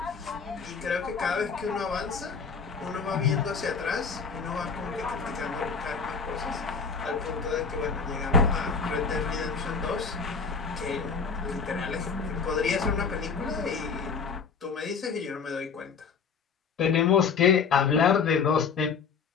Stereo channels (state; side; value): quieter; right; 5.6 dB